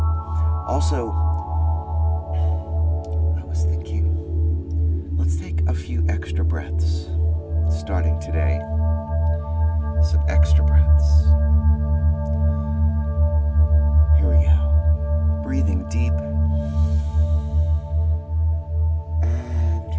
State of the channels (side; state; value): both; identical; correlation 1.00